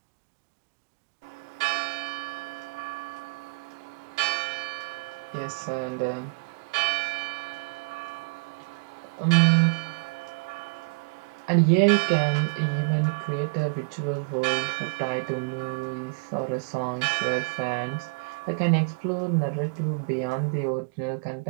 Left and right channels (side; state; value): left; quieter; 33.6 dB